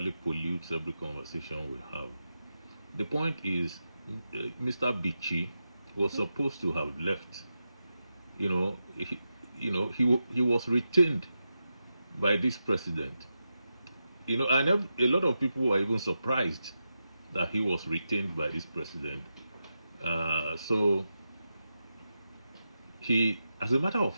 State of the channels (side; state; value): both; inverted; correlation -0.89